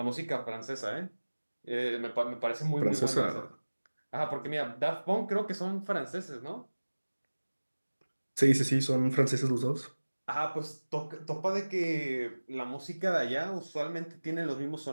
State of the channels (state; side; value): inverted; both; correlation -1.00